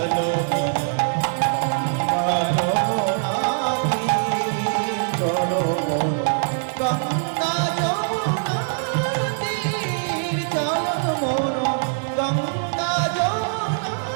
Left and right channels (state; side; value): silent; left; digital silence